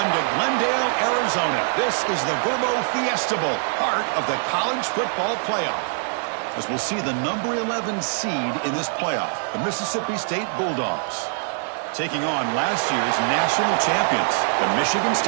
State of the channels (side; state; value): left; silent; digital silence